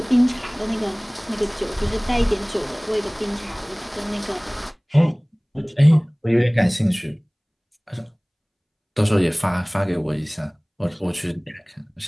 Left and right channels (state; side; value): identical; both; correlation 1.00